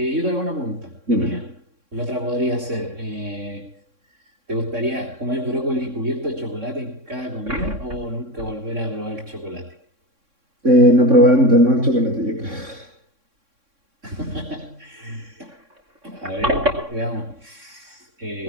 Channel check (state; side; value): late; left; 3.6 ms